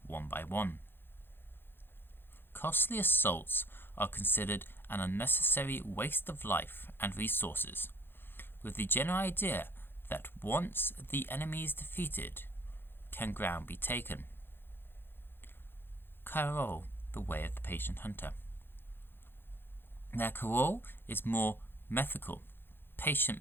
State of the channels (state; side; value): late; right; 0.10 ms